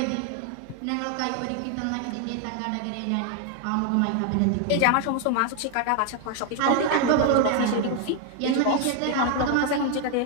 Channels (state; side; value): different; both; correlation 0.01